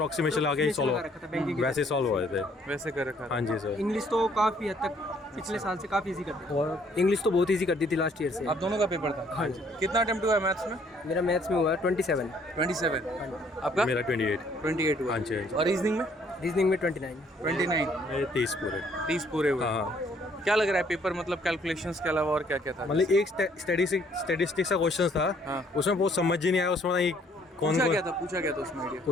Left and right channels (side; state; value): both; normal; correlation 0.63